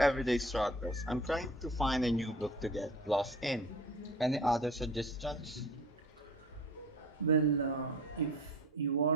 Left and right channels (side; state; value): both; normal; correlation 0.42